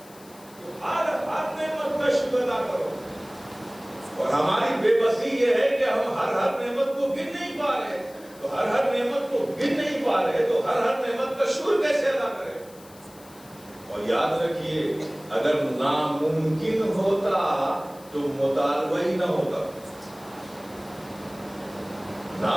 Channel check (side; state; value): left; noise; hiss, 23 dB below the sound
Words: ہر نعمت کا شکر ادا کرو. اور ہماری بے بسی یہ ہے کہ ہم ہر نعمت کو گن نہیں پا رہے. تو ہر نعمت کو گن نہیں پا رہے تو ہر نعمت کا شکر کیسے ادا کریں؟ اور یاد رکھیے, اگر ناممکن ہوتا تو مطالبہ ہی نہ ہوتا.